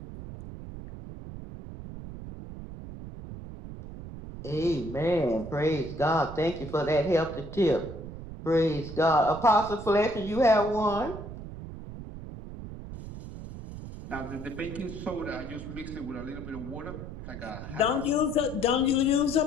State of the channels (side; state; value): right; noise; rumble, 11 dB below the sound